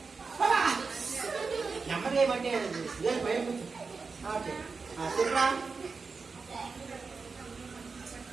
నెమ్మది ఏమంటే భయం కూర్చో. ఓకే, చెప్పరా?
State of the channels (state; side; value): quieter; left; 4.6 dB